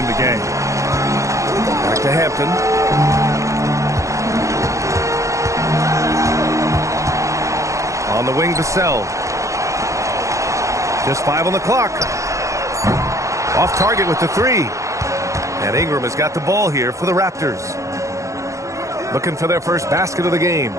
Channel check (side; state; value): left; late; 0.15 ms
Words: the game. Back to Hampton. On the wing, Vassell. Just 5 on the clock. Off target with the 3. And Ingram has got the ball here for the Raptors. Looking for their first basket of the game.